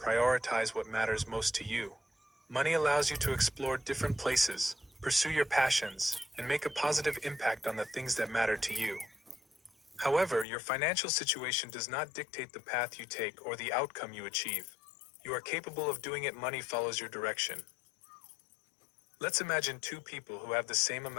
what matters most to you. Money allows you to explore different places, pursue your passions, and make a positive impact on the things that matter to you. However, your financial situation does not dictate the path you take or the outcome you achieve. You are capable of doing it. Money follows your direction. Let's imagine two people who have the same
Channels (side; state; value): right; drops out; at 10.5 s